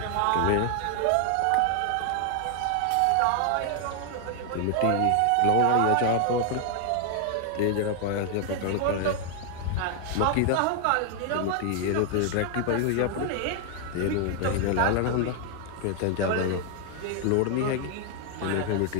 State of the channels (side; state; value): both; different; correlation 0.00